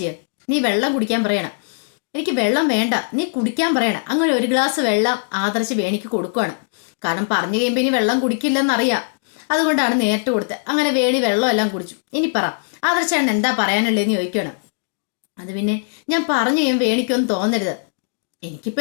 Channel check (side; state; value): right; silent; digital silence